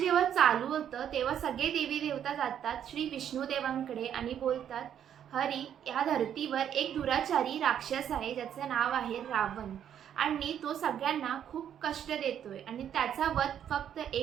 चालू होतं तेव्हा सगळे देवी देवता जातात श्री विष्णुदेवांकडे आणि बोलतात, हरी, या धर्तीवर एक दुराचारी राक्षस आहे ज्याचं नाव आहे रावण आणि तो सगळ्यांना खूप कष्ट देतोय आणि त्याचा वध फक्त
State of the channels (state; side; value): quieter; left; 9.5 dB